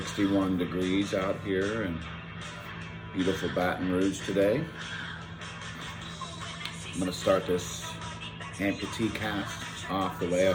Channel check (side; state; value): both; identical; correlation 1.00